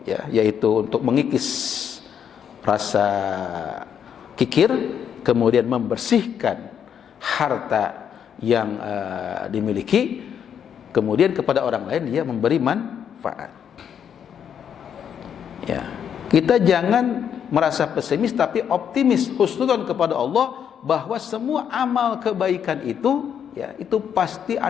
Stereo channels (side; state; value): right; quieter; 8.4 dB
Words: ya, yaitu untuk mengikis rasa kikir, kemudian membersihkan harta yang dimiliki, kemudian kepada orang lain dia memberi manfaat. Ya, kita jangan merasa pesimis tapi optimis, husnudzon kepada Allah bahwa semua amal kebaikan itu, ya, itu pasti